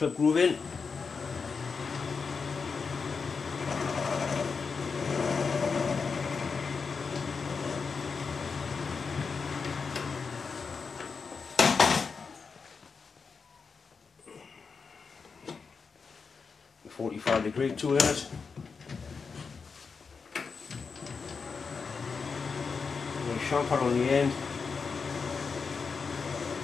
groove in. A 45-degree tool in it. And a chamfer on the end.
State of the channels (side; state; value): right; quieter; 5.2 dB